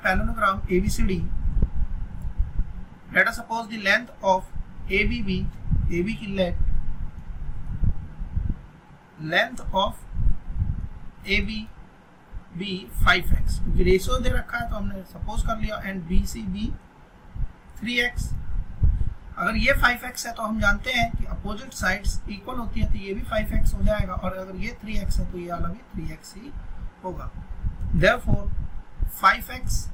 parallelogram ABCD, let us suppose the length of ABB, AB की length of ABB 5x, क्योंकि रेशियो दे रखा है तो हमने सपोज कर लिया, एंड BCB 3x। अगर ये 5x है तो हम जानते हैं कि अपोजिट साइड्स इक्वल होती है, तो ये भी 5x हो जाएगा, और अगर ये 3x है तो ये वाला भी 3x ही होगा। Therefore 5x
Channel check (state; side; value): identical; both; correlation 1.00